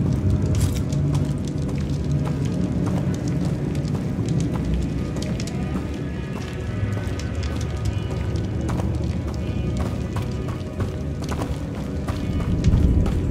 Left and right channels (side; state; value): both; identical; correlation 1.00